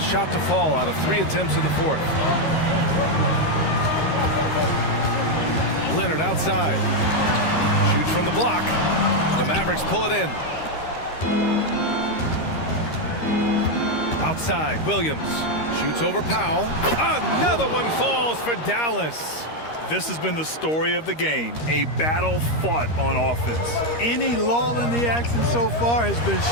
to fall out of 3 attempts in the 4th. Leonard outside. Shoots from the block. The Mavericks pull it in. Outside, Williams. Shoots over Powell. Another one falls for Dallas. This has been the story of the game, a battle fought on offense. Any lull in the action so far has been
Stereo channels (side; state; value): right; late; 13 ms